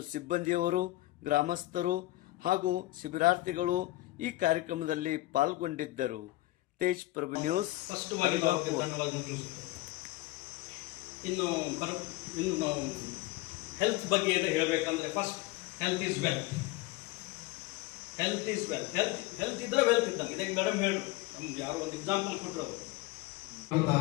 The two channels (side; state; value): right; quieter; 18.5 dB